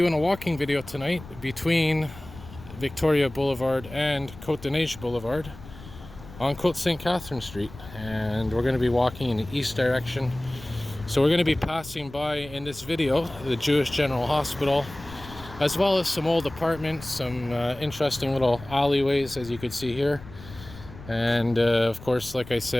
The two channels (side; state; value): left; noise; rumble, 16 dB below the sound